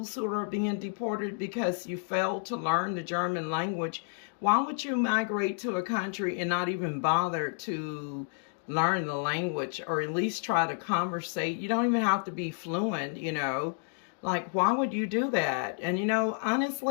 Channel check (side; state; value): right; silent; 57 dB below the other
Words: who are being deported because you failed to learn the German language. Why would you migrate to a country and not even bother to learn the language, or at least try to conversate? You don't even have to be fluent, you know. Like, why would you do that? And, you know,